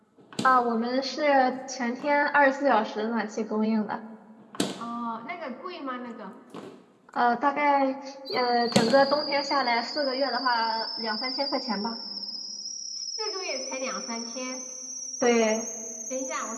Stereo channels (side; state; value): both; identical; correlation 1.00